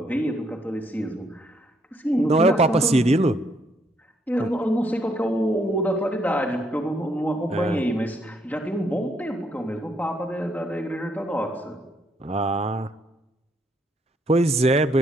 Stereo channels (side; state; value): both; normal; correlation 0.72